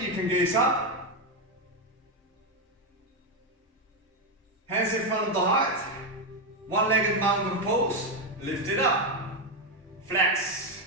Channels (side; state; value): both; normal; correlation 0.07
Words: you can gaze up. Hands in front of the heart. One-legged mountain pose, lift it up. Flex